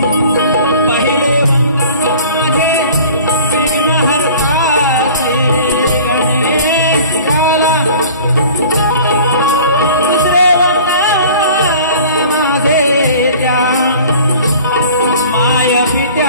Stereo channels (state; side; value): inverted; both; correlation -0.45